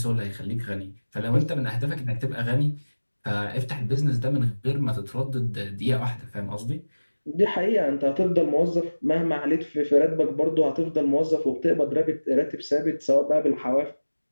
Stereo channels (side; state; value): both; inverted; correlation -1.00